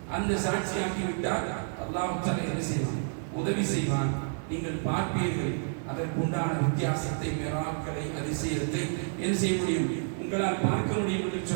அந்த சாட்சியாக்கி விட்டால் அல்லாஹ் தஆலா என்ன செய்வான்? உதவி செய்வான். நீங்கள் பார்ப்பீர்கள் அதற்குண்டான வித்தியாசத்தை, மிராக்களை, அதிசயத்தை என்ன செய்ய முடியும்? உங்களால் பார்க்க முடியும் என்று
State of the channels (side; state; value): left; silent; 58 dB below the other